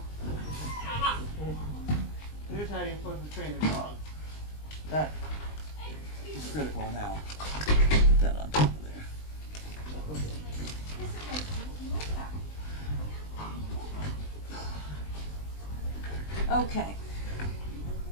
Here's how you're supposed to train a dog. That is critical now. Put that on top of there. Okay.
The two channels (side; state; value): right; late; 20 ms